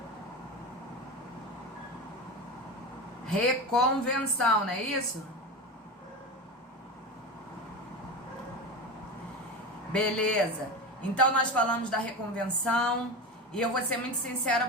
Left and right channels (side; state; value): both; normal; correlation 0.24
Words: Reconvenção, não é isso? Beleza. Então nós falamos da reconvenção e eu vou ser muito sincera